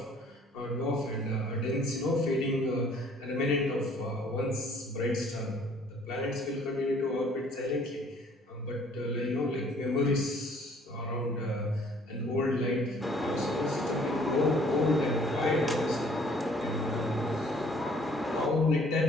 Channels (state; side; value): normal; both; correlation 0.58